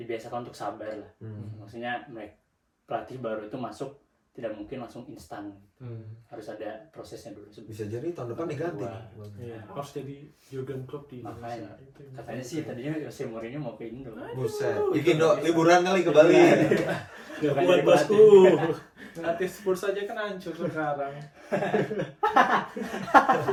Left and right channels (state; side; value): identical; both; correlation 1.00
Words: untuk sabar lah. Maksudnya pelatih baru itu masuk tidak mungkin langsung instan. Harus ada prosesnya dulu. Bisa jadi tahun depan diganti. Iya, harus jadi Jurgen Klopp di Makanya Indonesia. Itu yang katanya sih tadinya Jose Mourinho mau ke Indo. Buset. Bikin liburan kali ke Bali. Gak Bukan buat jadi bosku. Nanti Spurs aja kan hancur sekarang.